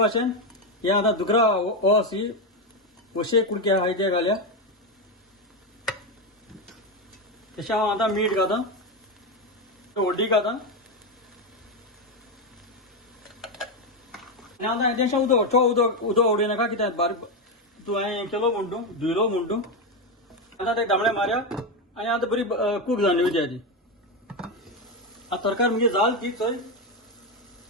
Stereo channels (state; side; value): normal; both; correlation 0.09